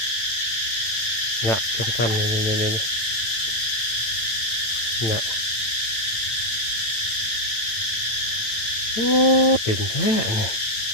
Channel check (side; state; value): right; late; 9.0 ms